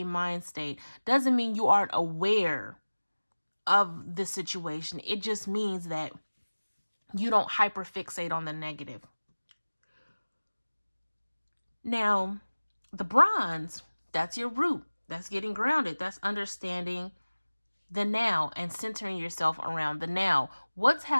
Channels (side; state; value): both; inverted; correlation -1.00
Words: mind state doesn't mean you aren't aware of the situation. It just means that you don't hyperfixate on the negative. Now, the bronze, that's your root. That's getting grounded. That's understanding the now and centering yourself around the now. What's